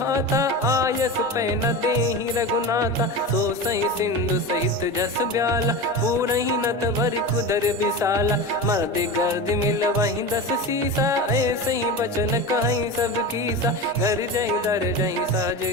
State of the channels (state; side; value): normal; both; correlation 0.26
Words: हाथा आयस पै न देहि रघुनाथा। सो सही सिंधु सहित जस ब्याला पूरहि नत भर कुदर विशाला। मर्द गर्द मिल वहीं 10 सीसा ऐसे ही बचन कहीं सब कीसा। घर जय दर जय सहज